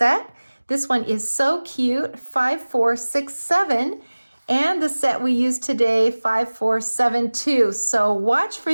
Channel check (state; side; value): inverted; both; correlation -1.00